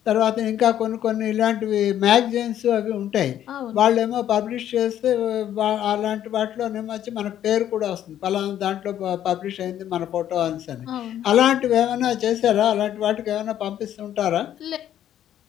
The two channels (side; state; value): right; quieter; 11.1 dB